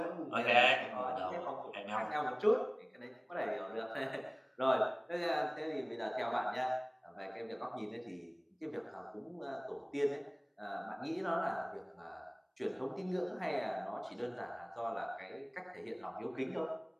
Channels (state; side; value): identical; both; correlation 1.00